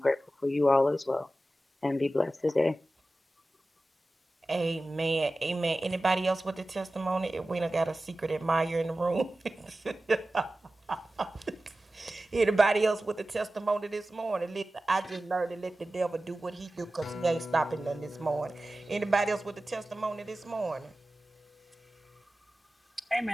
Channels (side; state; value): both; normal; correlation 0.95